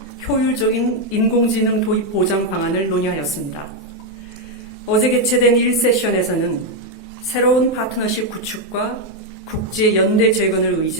효율적인 인공지능 도입 보장 방안을 논의하였습니다. 어제 개최된 1세션에서는 새로운 파트너십 구축과 국제 연대 재건을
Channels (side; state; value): both; normal; correlation 0.02